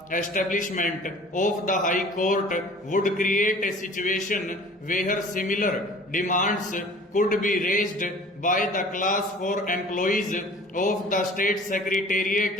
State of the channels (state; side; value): normal; both; correlation 0.47